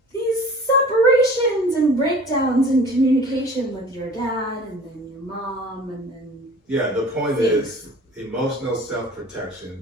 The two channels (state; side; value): normal; both; correlation 0.44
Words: these separations and breakdowns in communication with your dad, and then your mom, and then yeah. The point is emotional